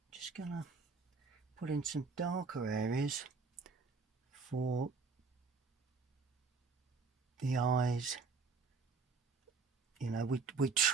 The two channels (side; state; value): left; quieter; 4.7 dB